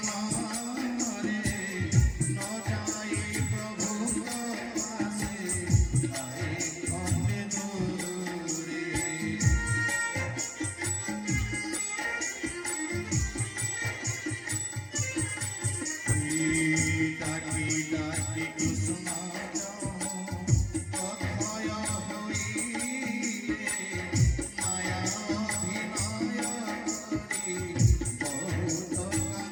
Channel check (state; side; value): identical; both; correlation 1.00